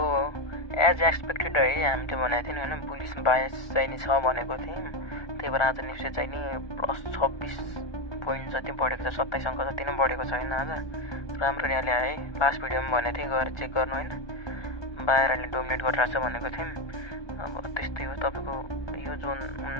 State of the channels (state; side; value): late; right; 1.2 ms